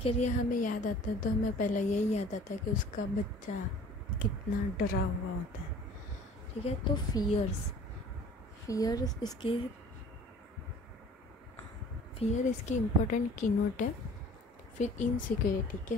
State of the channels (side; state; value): both; normal; correlation 0.48